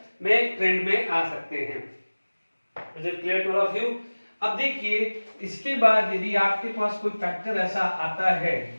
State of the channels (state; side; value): inverted; both; correlation -1.00